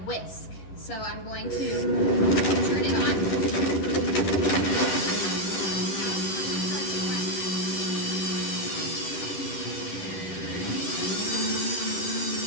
whisk. So I'm going to turn it on.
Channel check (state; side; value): late; right; 10 ms